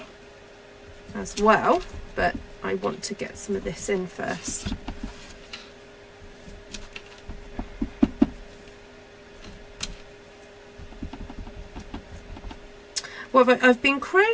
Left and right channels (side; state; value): both; identical; correlation 1.00